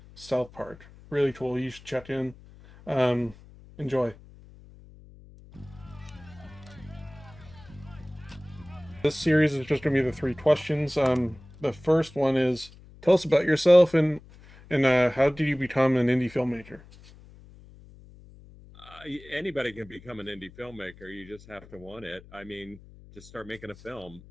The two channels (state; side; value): noise; left; hum, 21 dB below the sound